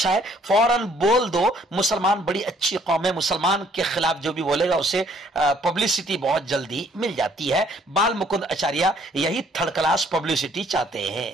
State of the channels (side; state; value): both; normal; correlation 0.62